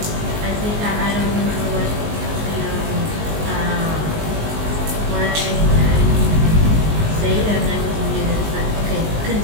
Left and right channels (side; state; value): left; late; 19 ms